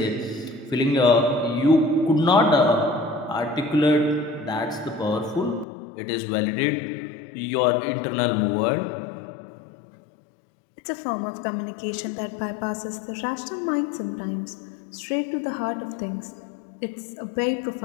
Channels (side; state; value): right; drops out; at 5.7 s